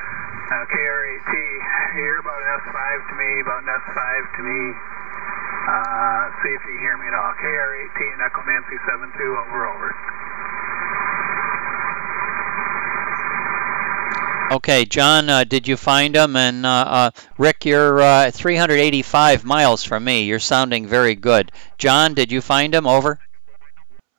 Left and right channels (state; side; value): silent; left; 67 dB below the other